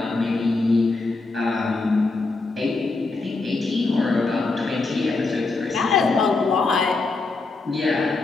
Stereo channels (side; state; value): right; quieter; 3.6 dB